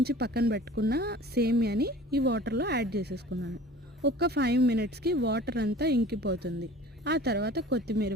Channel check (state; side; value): normal; both; correlation 0.43